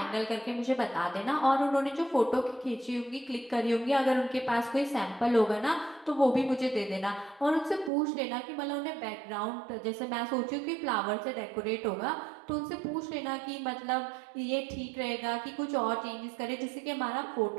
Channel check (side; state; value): left; drops out; at 7.9 s